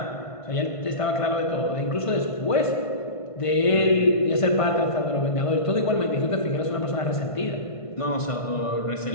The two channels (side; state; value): right; late; 1.5 ms